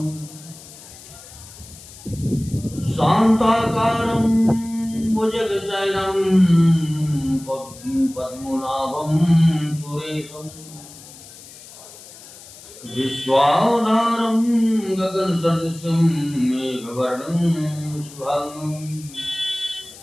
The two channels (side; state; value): left; noise; hiss, 18 dB below the sound